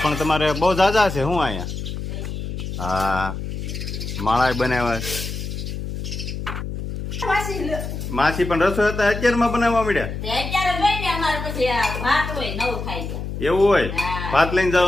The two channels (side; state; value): left; noise; hum, 6 dB below the sound